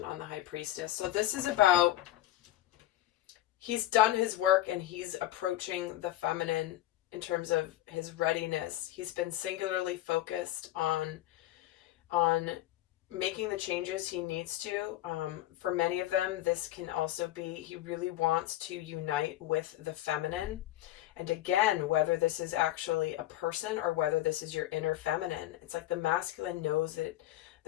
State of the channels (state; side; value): quieter; right; 14.8 dB